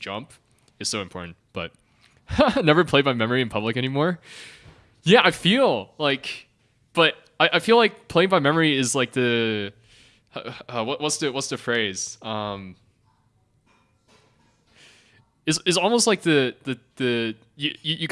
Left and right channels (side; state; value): both; identical; correlation 1.00